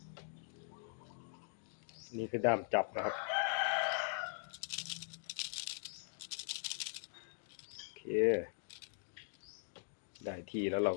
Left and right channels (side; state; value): right; silent; digital silence